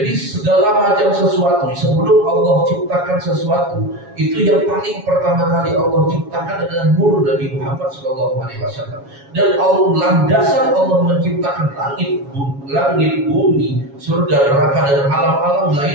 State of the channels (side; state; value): left; late; 7.2 ms